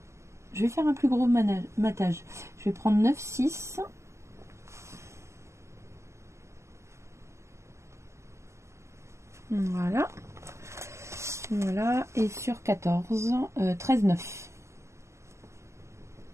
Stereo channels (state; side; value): late; left; 0.13 ms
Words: Je vais faire un plus gros matage. Je vais prendre 9,6. Voilà. Voilà. Et sur 14, 13,9.